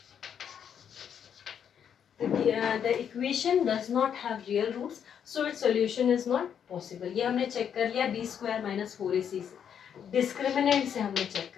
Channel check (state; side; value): quieter; right; 8.3 dB